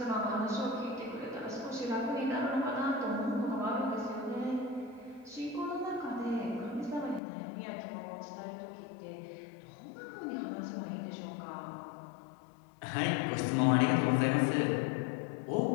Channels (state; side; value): drops out; right; at 7.2 s